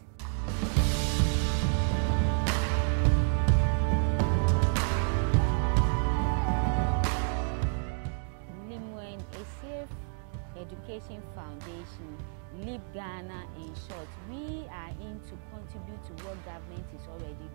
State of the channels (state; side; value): silent; left; 58 dB below the other